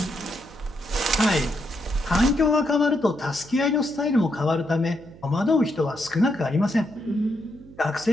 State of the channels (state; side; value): noise; right; hum, 21 dB below the sound